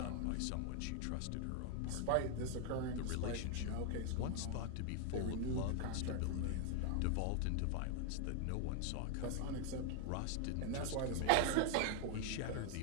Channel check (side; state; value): both; different; correlation 0.00